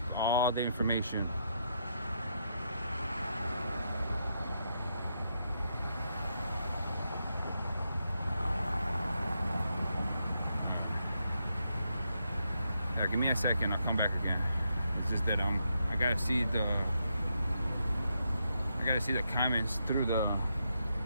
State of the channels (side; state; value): both; inverted; correlation -0.81